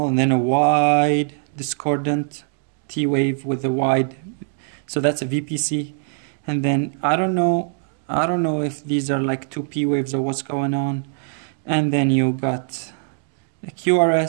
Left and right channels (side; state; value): left; silent; 62 dB below the other